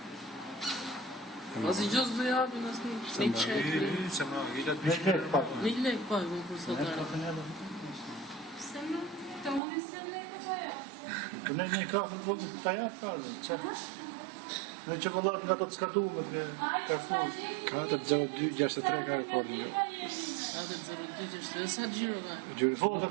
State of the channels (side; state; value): left; drops out; at 9.6 s